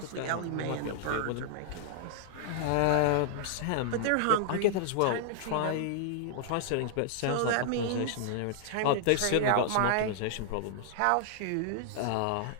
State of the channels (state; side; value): different; both; correlation -0.01